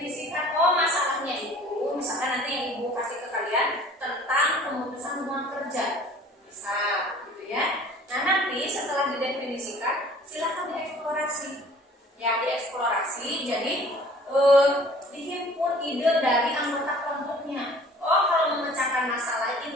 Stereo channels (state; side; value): normal; both; correlation 0.50